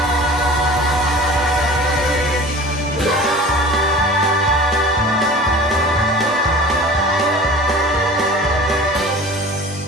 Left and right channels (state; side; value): normal; both; correlation 0.41